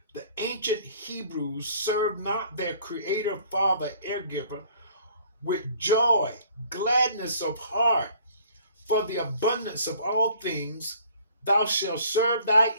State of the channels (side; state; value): both; inverted; correlation -0.55